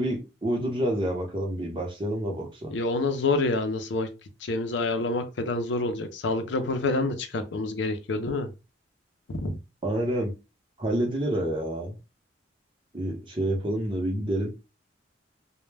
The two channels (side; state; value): both; normal; correlation 0.45